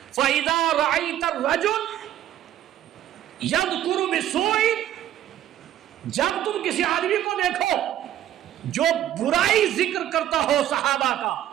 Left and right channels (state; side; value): quieter; left; 11.9 dB